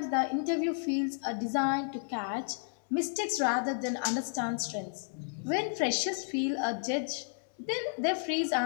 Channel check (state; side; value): silent; right; digital silence